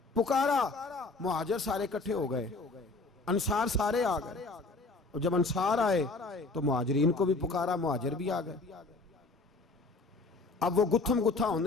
पुकारा, मुहाजिर सारे इकट्ठे हो गए, अंसार सारे आ गए। और जब अंसार आए तो मुहाजिरीन को भी पुकारा, मुहाजिर भी आ गए। अब वो गुत्थम गुत्था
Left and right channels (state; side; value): quieter; right; 3.6 dB